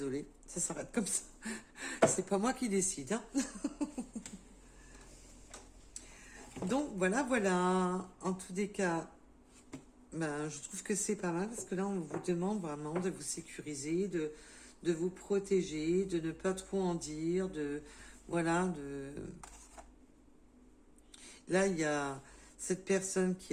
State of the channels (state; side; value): identical; both; correlation 1.00